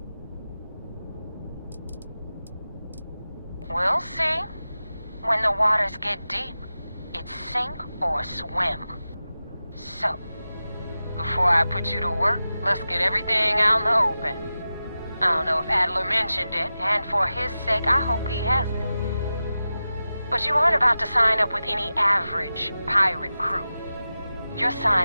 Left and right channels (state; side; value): inverted; both; correlation -0.93